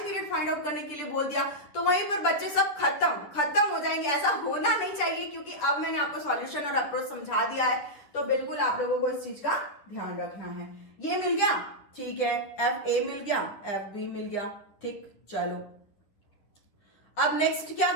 फाइंड आउट करने के लिए बोल दिया तो वहीं पर बच्चे सब खत्म हो जाएंगे। ऐसा होना नहीं चाहिए, क्योंकि अब मैंने आपको सॉल्यूशन और अप्रोच समझा दिया है, तो बिल्कुल आप लोगों को इस चीज का ध्यान रखना है। ये मिल गया, ठीक है, एफ ए मिल गया, एफ बी मिल गया, ठीक। चलो अब नेक्स्ट क्या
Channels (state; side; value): late; right; 10 ms